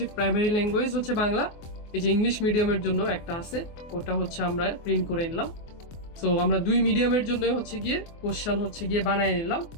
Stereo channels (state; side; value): late; right; 24 ms